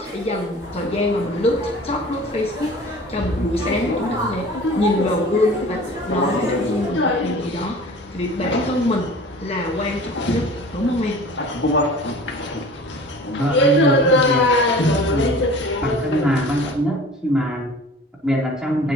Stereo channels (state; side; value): normal; both; correlation 0.43